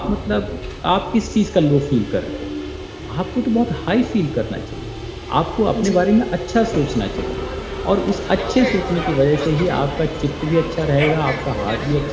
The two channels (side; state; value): both; identical; correlation 1.00